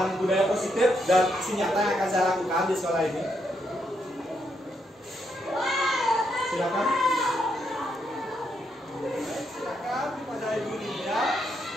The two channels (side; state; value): both; normal; correlation 0.78